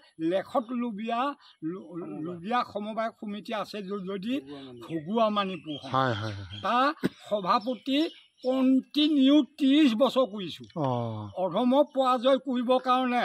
লেখত লুবিয়া সমবায় সমিতি আছে যদি ঘুগুৱা মানিপুৰ তাৰ সভাপতি কণ্টিনিউ 30 বছৰ কৰিছোঁ। অধমক পৰাজয় কৰিবৰ কাৰণে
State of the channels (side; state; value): both; identical; correlation 1.00